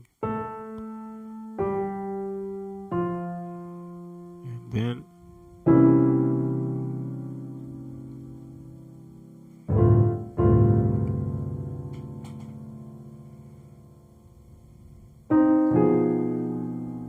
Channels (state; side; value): identical; both; correlation 1.00